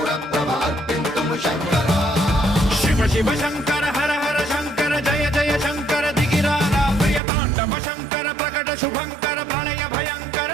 ప్రభ అర్పింతుము శంకరా శివ శివ శంకర హర హర శంకర జయ జయ శంకర దిగిరారా ప్రియ తాండవ శంకర ప్రకట శుభంకర ప్రళయ భయంకర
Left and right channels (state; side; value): drops out; left; at 7.2 s